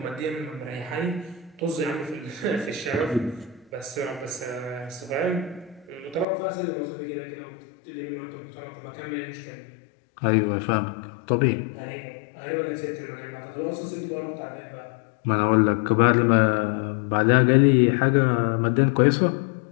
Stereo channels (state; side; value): drops out; right; at 6.2 s